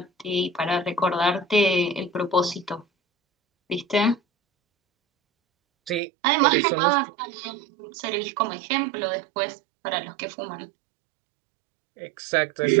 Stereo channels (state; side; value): drops out; left; at 6.0 s